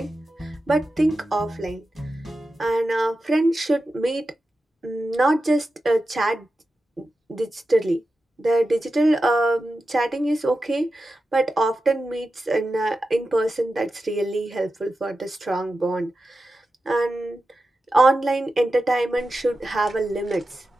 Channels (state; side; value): normal; both; correlation 0.91